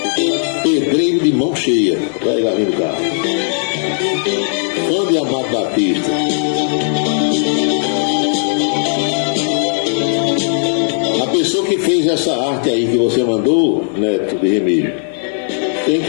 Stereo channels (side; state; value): right; silent; 59 dB below the other